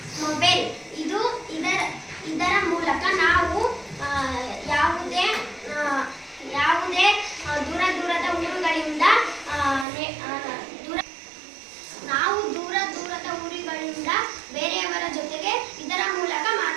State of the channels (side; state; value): left; drops out; at 9.9 s